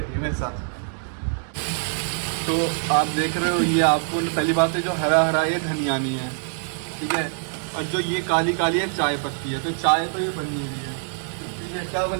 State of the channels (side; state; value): left; silent; digital silence